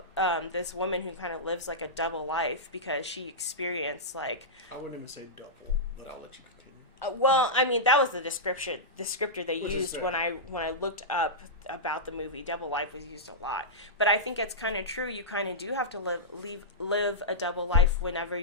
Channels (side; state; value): both; normal; correlation -0.12